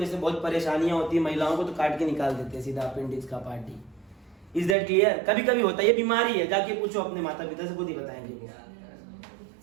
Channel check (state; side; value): drops out; left; at 4.8 s